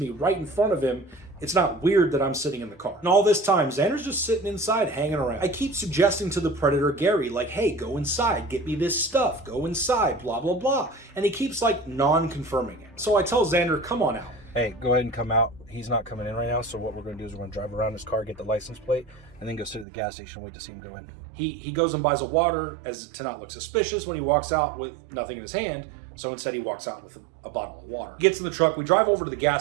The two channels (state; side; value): drops out; left; at 19.9 s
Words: right in front of him, it's not weird that I'm sitting in the car. And all this time, Xander's just sitting inside hanging around. I keep suggesting to the Predator Gary, like, hey, go inside, get me this stuff, go inside, blah, blah, blah. And he keeps like non-confirming it. So I tell Xander, come on out. Hey, go ahead and come out. He's not coming in right now, so what we're going to do is we're going to drive around his car, get the license plate, and then go sit at the gas station and wait to see him go in. He goes and buys a water as to not look suspicious when he walks out with nothing in his hand. So instead he walks out with a bottle of water. He gets in the truck, we drive over to the